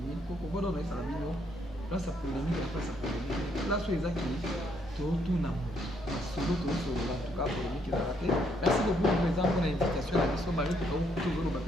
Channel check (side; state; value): both; normal; correlation 0.72